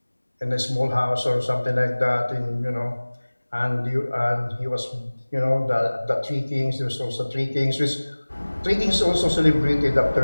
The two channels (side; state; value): both; inverted; correlation -1.00